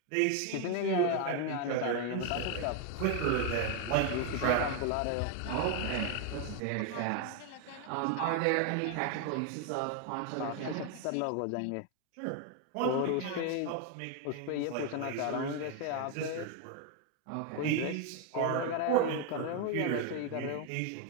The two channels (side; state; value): both; different; correlation 0.01